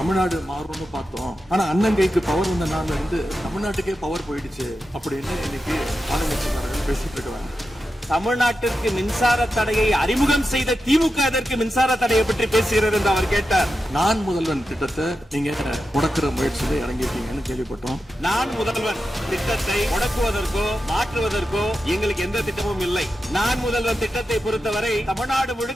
மாறும்னு பார்த்தோம், ஆனா அண்ணன் கைக்கு பவர் வந்த நாள்ல இருந்து தமிழ்நாட்டுக்கே பவர் போயிடுச்சு அப்படின்னு இன்னைக்கு ஆளுங்கட்சிக்காரங்க பேசிட்டு இருக்காங்க. தமிழ்நாட்டிற்கு மின்சார தடையை அறிமுகம் செய்த திமுக அதற்கு மின்சார தடையை பற்றி பேசுகிறது என்று அவர் கேட்டார். நான் முதல்வன் திட்டத்தை நீங்க முடக்கிற முயற்சியில இறங்கிருக்கீங்கன்னு கேள்விப்பட்டோம். நான் முதல்வன் திட்டத்தை முடக்குவதற்கோ மாற்றுவதற்கோ எங்களுக்கு எந்த திட்டமும் இல்லை. நான் முதல்வன் திட்டத்தை பொறுத்தவரை தமிழ்நாடு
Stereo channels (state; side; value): normal; both; correlation 0.90